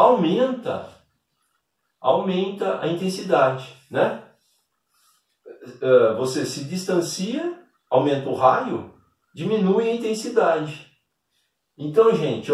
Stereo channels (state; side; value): identical; both; correlation 1.00